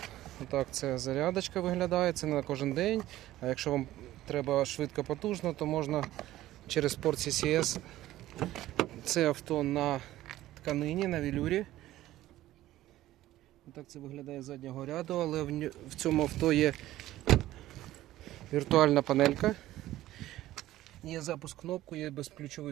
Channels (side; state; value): left; quieter; 15.0 dB